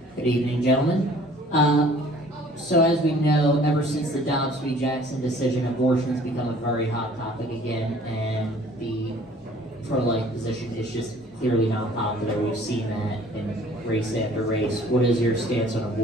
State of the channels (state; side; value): normal; both; correlation 0.53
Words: Good evening, gentlemen. So as we know, ever since the Dobbs v. Jackson decision, abortion has become a very hot topic again, and the pro-life position is just clearly not popular. We've seen that in race after race. What is your stance on